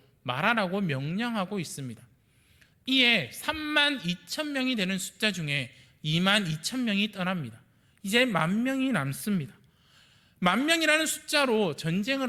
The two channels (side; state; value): both; identical; correlation 1.00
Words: 말하라고 명령하고 있습니다. 이에 32,000명이 되는 숫자 중에 22,000명이 떠납니다. 이제 10,000명이 남습니다. 10,000명이라는 숫자로